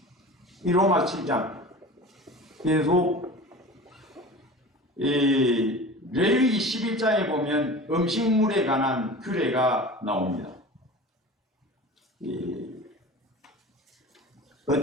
이 로마 7장. 그래서 이 레위기 11장에 보면 음식물에 관한 규례가 나옵니다.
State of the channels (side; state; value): both; normal; correlation 0.37